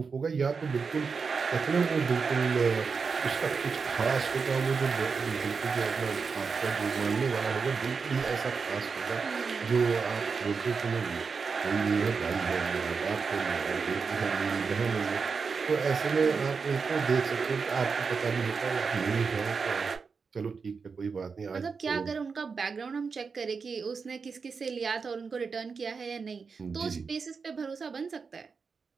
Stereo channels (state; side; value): quieter; left; 5.2 dB